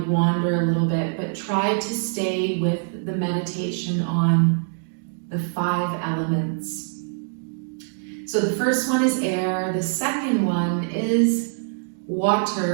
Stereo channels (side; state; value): left; silent; digital silence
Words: wander a little bit, but try to stay with the meditation on the 5 elements. So the first one is air, the second one is